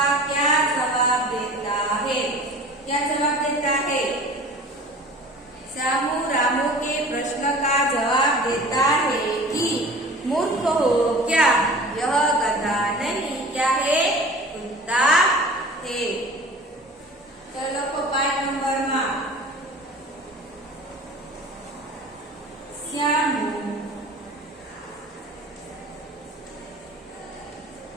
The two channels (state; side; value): normal; both; correlation 0.41